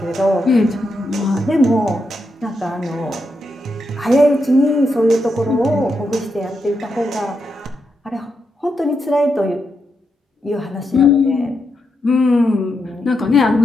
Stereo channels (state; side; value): normal; both; correlation 0.84